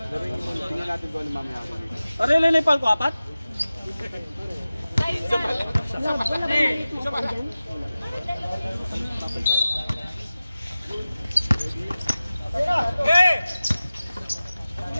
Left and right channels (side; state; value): both; inverted; correlation -0.96